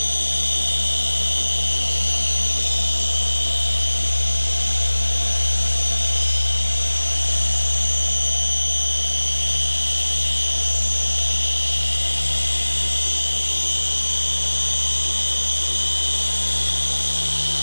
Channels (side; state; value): both; inverted; correlation -1.00